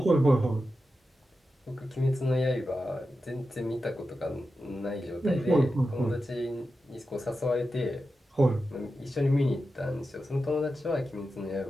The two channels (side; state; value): both; normal; correlation 0.91